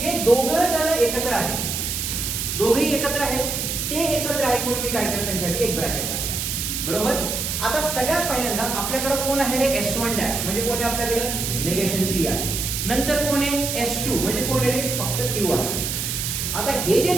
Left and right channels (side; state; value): right; noise; hiss, 2 dB below the sound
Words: दोघं जण एकत्र आहेत, दोघेही एकत्र आहेत, ते एकत्र आहेत म्हणून मी काय केलं, त्यांच्यासाठी एक ब्रॅकेट टाकला. बरोबर. आता सगळ्यात पहिल्यांदा आपल्याकडे कोण आहे रे, S1 डॅश म्हणजे कोण आहे आपल्याकडे, निगेशन P आहे. नंतर कोण आहे S2 म्हणजे कोण आहे रे, फक्त Q आहे. आता हे जे